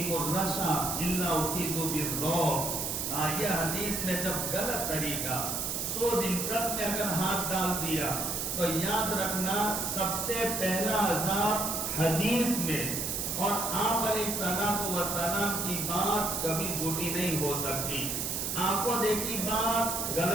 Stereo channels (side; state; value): right; noise; hiss, 1 dB below the sound